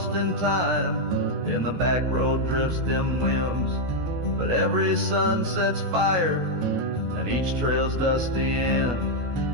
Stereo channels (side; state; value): left; late; 16 ms